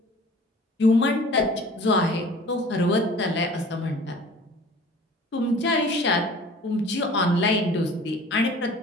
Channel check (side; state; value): both; normal; correlation 0.46